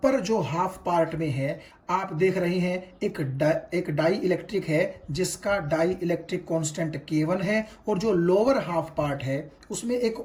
जो हाफ पार्ट में है आप देख रहे हैं एक डाई इलेक्ट्रिक है जिसका डाई इलेक्ट्रिक कांस्टेंट K1 है, और जो लोअर हाफ पार्ट है उसमें एक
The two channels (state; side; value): identical; both; correlation 1.00